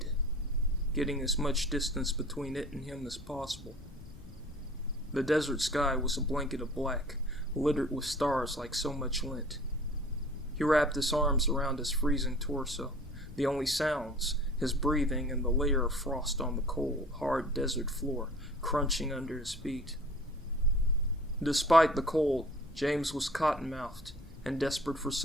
getting as much distance between it and him as possible. The desert sky was a blanket of black, littered with stars like so much lint. He wrapped his arms around his freezing torso, the only sounds, his breathing and the layer of frost on the cold, hard desert floor, crunching under his feet. Despite the cold, James was cotton-mouthed and desperate for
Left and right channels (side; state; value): left; noise; rumble, 19 dB below the sound